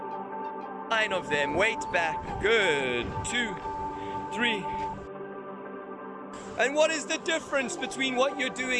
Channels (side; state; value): both; identical; correlation 1.00